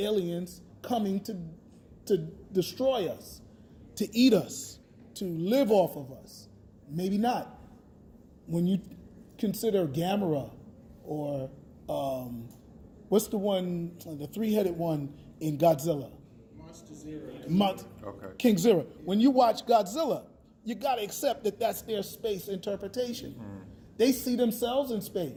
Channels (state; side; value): identical; both; correlation 1.00